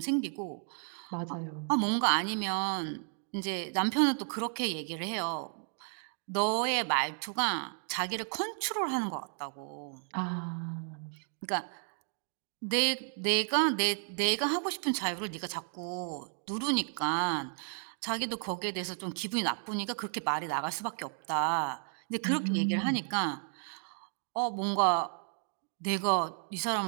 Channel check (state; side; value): silent; left; 56 dB below the other